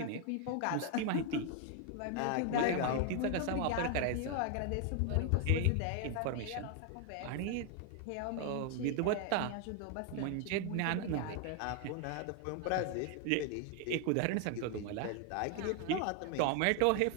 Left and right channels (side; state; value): both; different; correlation 0.00